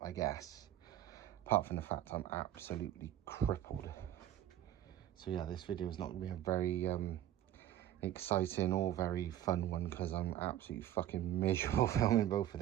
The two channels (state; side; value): quieter; left; 12.0 dB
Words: I guess, apart from the fact I'm absolutely crippled. So yeah, this video is not going to be a very exciting or very fun one, because I'm absolutely fucking miserable filming both of